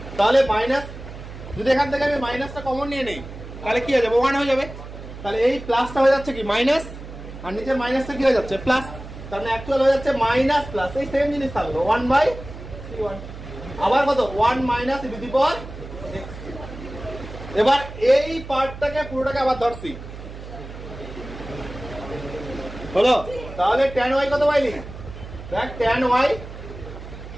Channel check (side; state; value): right; noise; hum, 13 dB below the sound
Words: তাহলে মাইনাস যদি এখান থেকে আমি মাইনাসটা কমন নিয়ে নেই তাহলে কি হয়ে যাবে 1 হয়ে যাবে তাহলে এই প্লাসটা হয়ে যাচ্ছে কি মাইনাস আর নিচের মাইনাসটা কি হয়ে যাচ্ছে প্লাস তার মানে অ্যাকচুয়াল হয়ে যাচ্ছে মাইনাস প্লাস এই সেম জিনিস থাকলো 1 বাই c1 আবার কত 1 minus e to the power x এবার এই পার্টটাকে পুরোটাকে আবার ধরছি হলো তাহলে tan y কত পাইলি দেখ tan